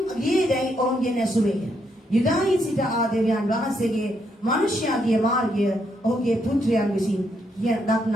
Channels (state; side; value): normal; both; correlation 0.76